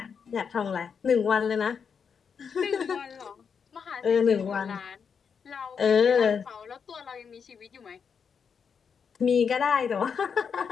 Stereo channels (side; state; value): right; quieter; 6.5 dB